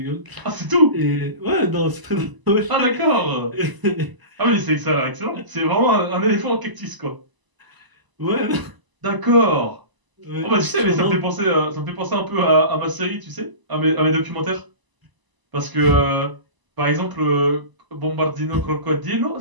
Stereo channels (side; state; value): left; late; 1.0 ms